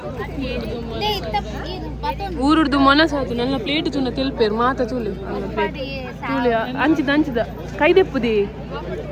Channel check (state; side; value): identical; both; correlation 1.00